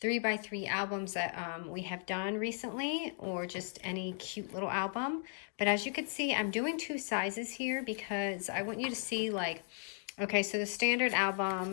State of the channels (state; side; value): silent; right; 54 dB below the other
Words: 3x3 albums that we have done recently, or just any cute little album. But as you can see, I'm doing two sizes here because I want you to see, like, okay, so the standard